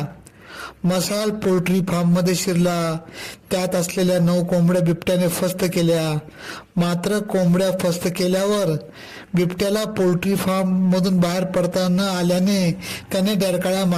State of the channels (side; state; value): both; identical; correlation 1.00